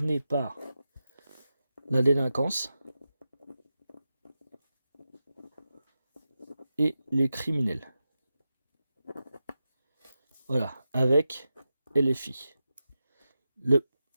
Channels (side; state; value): both; inverted; correlation -0.91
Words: par la délinquance et les criminels. Voilà, avec LFI. Le